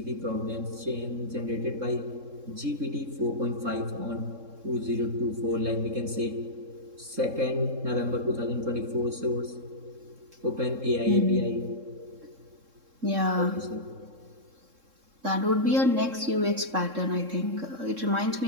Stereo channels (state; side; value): late; left; 3.7 ms